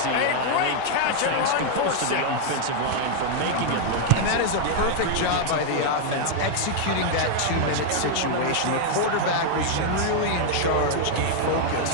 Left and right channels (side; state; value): both; different; correlation 0.00